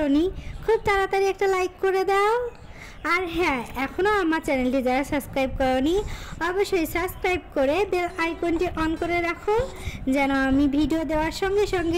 খুব তাড়াতাড়ি একটা লাইক করে দাও। আর হ্যাঁ, এখনও আমার চ্যানেলটি যারা সাবস্ক্রাইব করোনি অবশ্যই সাবস্ক্রাইব করে বেল আইকনটি অন করে রাখো, যেন আমি ভিডিও দেওয়ার সঙ্গে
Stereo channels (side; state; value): both; identical; correlation 1.00